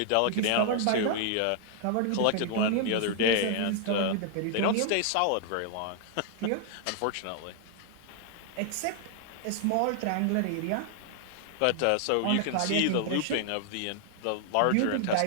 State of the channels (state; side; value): different; both; correlation 0.00